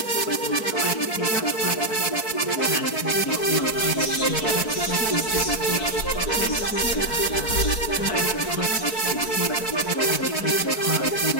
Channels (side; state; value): right; late; 4.6 ms